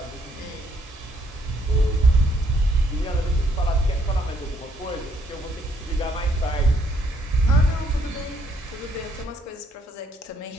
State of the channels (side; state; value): both; normal; correlation 0.69